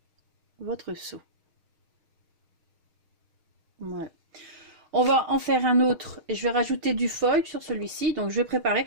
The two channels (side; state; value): left; late; 6.4 ms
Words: votre seau. Voilà. On va en faire un autre et je vais rajouter du foil sur celui-ci. Donc je vais préparer.